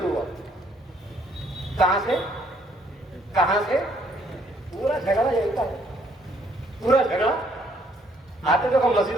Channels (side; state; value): both; normal; correlation 0.67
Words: ہوا۔ کہاں سے کہاں سے؟ پورا جھگڑا یہی تھا، پورا جھگڑا۔ آتے تو ہم